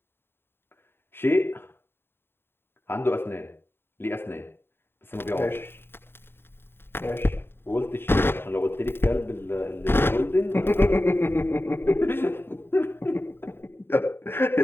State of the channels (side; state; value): right; late; 0.11 ms